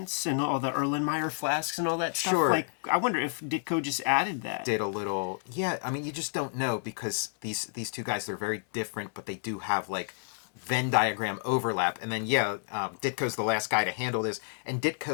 and all the Erlenmeyer flasks and all that stuff. Sure. Like, I wonder if Ditko just added that. Did a little, yeah, I mean, you just don't know because these two guys, they're very different, but they do have, like, Venn diagram overlap. And then, Ditko's the last guy to handle this. And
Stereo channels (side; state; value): right; silent; digital silence